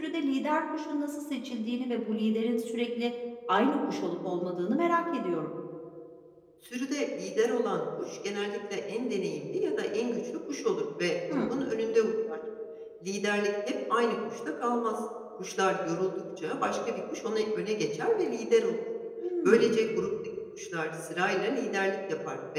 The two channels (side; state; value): both; identical; correlation 1.00